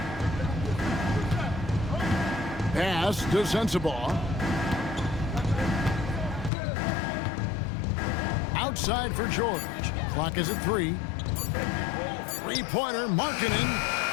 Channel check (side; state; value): right; drops out; at 6.5 s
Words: Pass to Sensabaugh. Outside for George. Clock is at 3. Three-pointer, Markkanen.